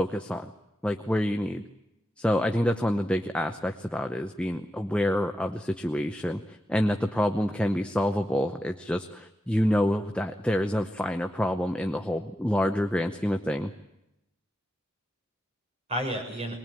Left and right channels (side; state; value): both; normal; correlation 0.89